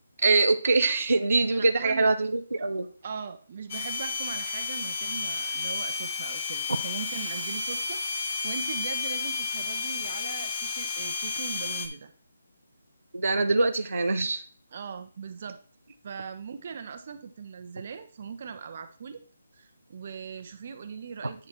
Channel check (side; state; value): both; inverted; correlation -0.83